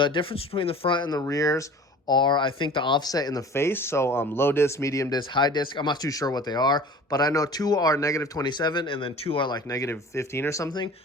difference between the front and the rears are, I think, the offset in the face. So low disc, medium disc, high disc. I'm not too sure what they are, but I know 2 are -27 and then 2 are like -15 or something.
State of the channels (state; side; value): normal; both; correlation 0.43